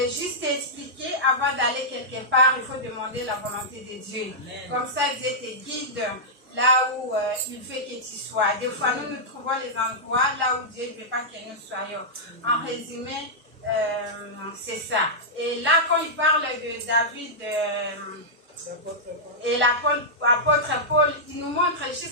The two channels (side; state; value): both; normal; correlation -0.11